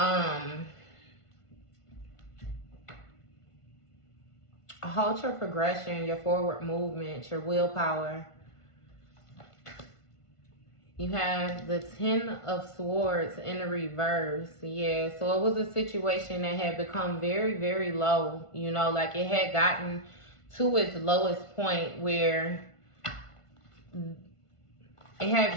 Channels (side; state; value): right; late; 1.5 ms